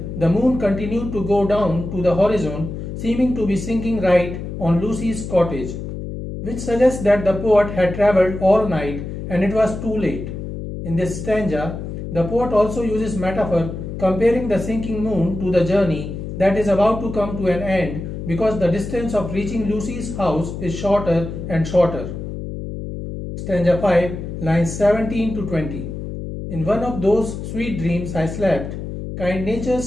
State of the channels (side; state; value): left; noise; hum, 7 dB below the sound